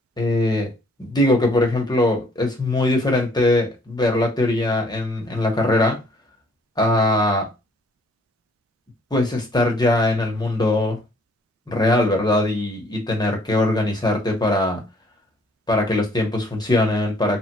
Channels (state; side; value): normal; both; correlation 0.61